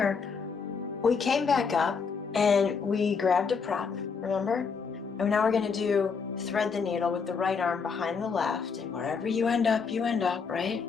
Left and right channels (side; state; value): right; quieter; 5.5 dB